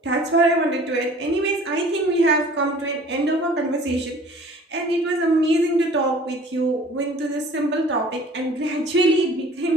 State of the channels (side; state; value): both; normal; correlation 0.49